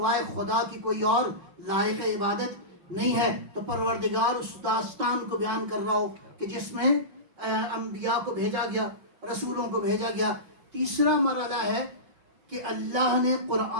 خدا کی کوئی اور لائق عبادت نہیں ہے. تو پروردگار اس داستان کو بیان کر رہا ہو کہ جس میں انبیاء کو بھیجا گیا، رسولوں کو بھیجا گیا. تیسرا مرحلہ ہے کہ اللہ نے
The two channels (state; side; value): late; left; 5.7 ms